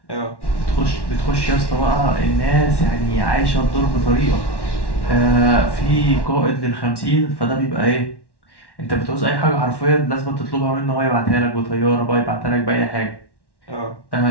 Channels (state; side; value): late; right; 1.1 ms